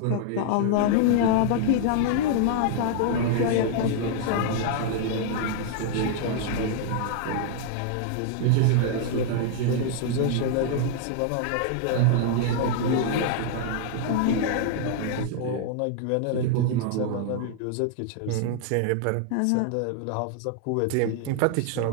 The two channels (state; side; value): different; both; correlation -0.01